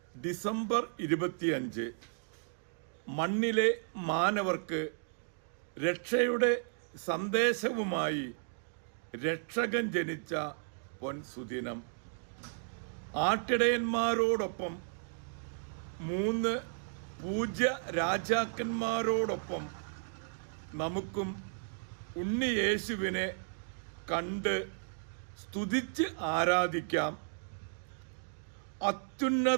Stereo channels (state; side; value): silent; left; digital silence